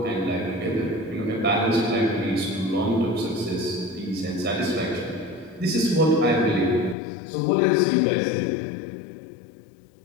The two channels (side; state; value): right; drops out; at 7.0 s